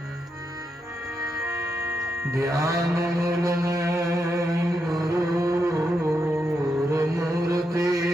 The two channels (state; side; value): normal; both; correlation 0.83